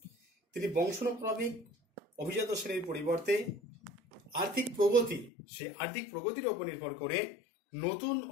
তিনি বংশানুক্রমিক অভিজাত শ্রেণীর পরিবর্তে আর্থিক প্রগতির উপর নির্ভর করে নতুন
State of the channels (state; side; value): drops out; right; at 5.3 s